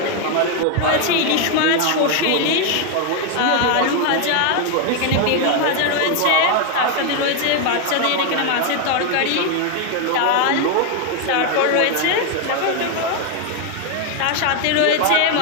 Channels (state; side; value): different; both; correlation 0.01